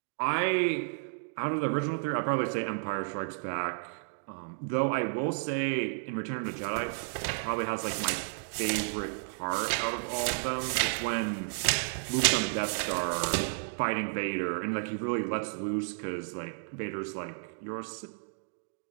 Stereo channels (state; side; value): silent; left; digital silence